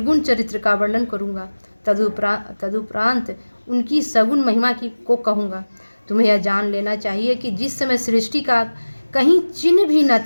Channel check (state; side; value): inverted; both; correlation -1.00